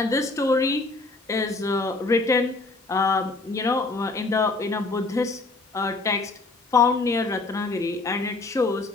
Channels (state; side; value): quieter; right; 3.5 dB